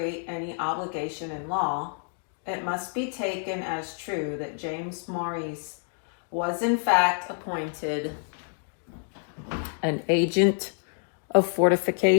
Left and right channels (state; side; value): silent; right; 60 dB below the other